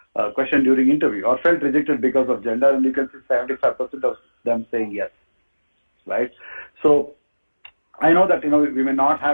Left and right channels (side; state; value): both; inverted; correlation -1.00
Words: question during interview or felt rejected because of gender? And you can see 75% of them saying yes, right? So, I know that, we may not